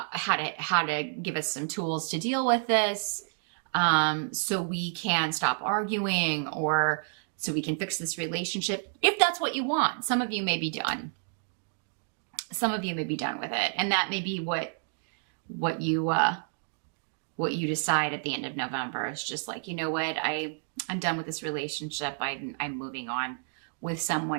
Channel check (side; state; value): left; silent; digital silence